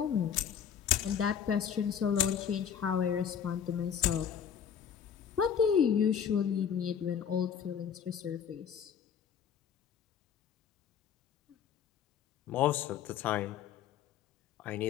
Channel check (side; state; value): right; quieter; 8.2 dB